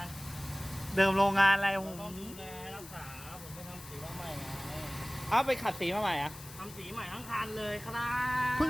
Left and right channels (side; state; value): left; noise; hiss, 16 dB below the sound